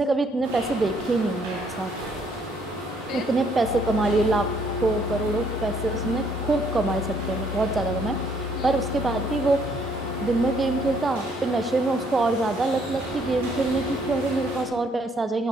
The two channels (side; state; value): both; normal; correlation 0.67